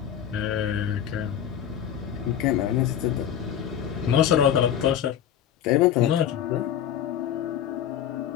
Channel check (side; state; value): right; quieter; 9.8 dB